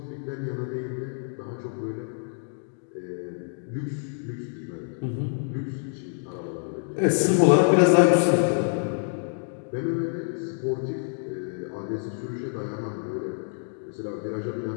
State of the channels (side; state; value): right; silent; 60 dB below the other